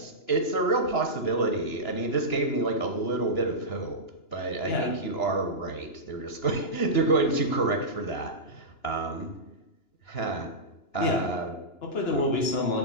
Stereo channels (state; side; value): late; right; 2.9 ms